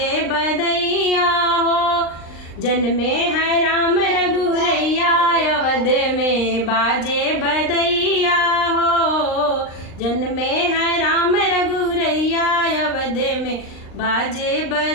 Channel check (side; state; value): right; late; 39 ms